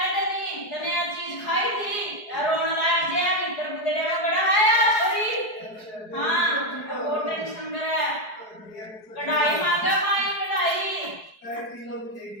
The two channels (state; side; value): late; right; 4.7 ms